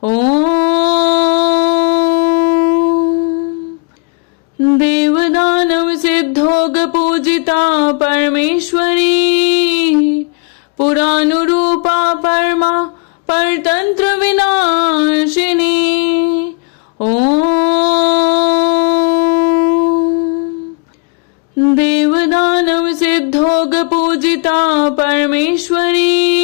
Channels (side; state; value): right; quieter; 34.4 dB